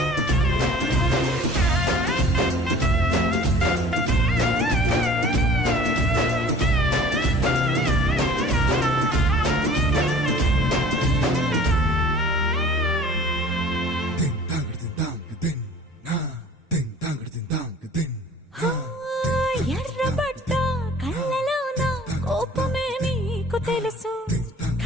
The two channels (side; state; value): both; normal; correlation 0.48